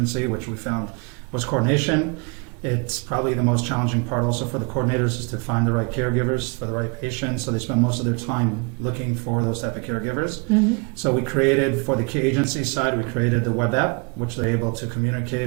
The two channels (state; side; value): quieter; left; 33.1 dB